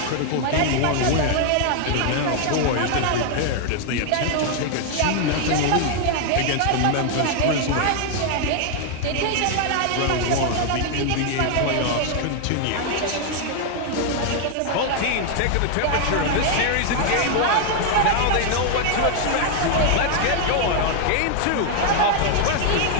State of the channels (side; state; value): both; different; correlation 0.00